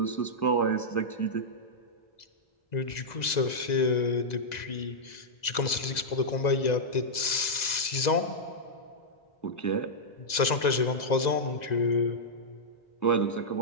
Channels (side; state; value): right; late; 2.0 ms